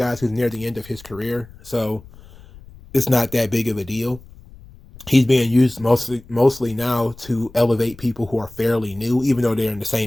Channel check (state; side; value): noise; left; rumble, 21 dB below the sound